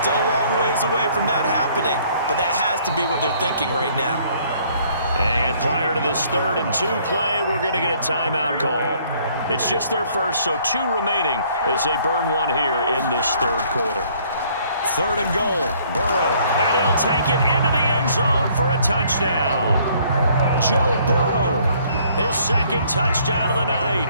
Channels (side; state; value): both; inverted; correlation -0.62